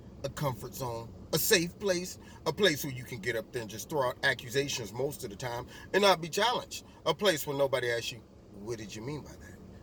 a comfort zone, a safe place, a place where you can get up there and just throw out accusations most of the time and not be challenged. A place where nobody asks you, what did you mean by that?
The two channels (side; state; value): both; identical; correlation 1.00